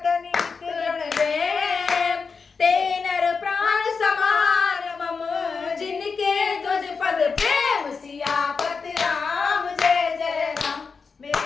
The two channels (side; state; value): right; quieter; 5.1 dB